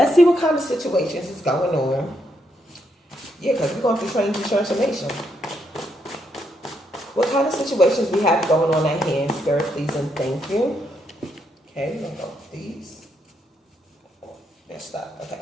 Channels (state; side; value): normal; both; correlation 0.77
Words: see what kind of situations is going on. Yeah, because we're going through change and transformation. What kind of situations we have going on at hand, Spirit, please and thank you. Okay, we're going to go with these. They're stuck.